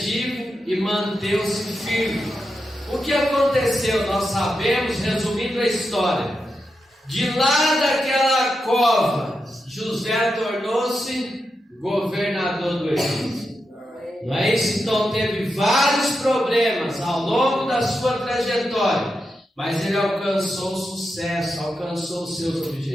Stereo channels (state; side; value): normal; both; correlation 0.87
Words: e manteve-se firme. O que aconteceu? Nós sabemos, resumindo a história. De lá daquela cova, José tornou-se governador do Egito. Não é isso? Então teve vários problemas ao longo da sua trajetória, mas ele alcançou sucesso, alcançou os seus